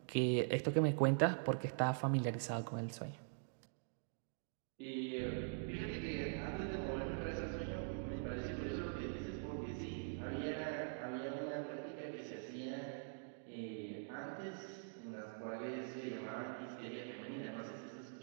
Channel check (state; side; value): silent; left; digital silence